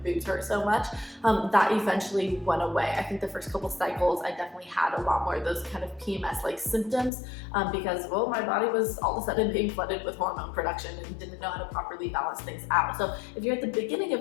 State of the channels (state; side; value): drops out; right; at 7.1 s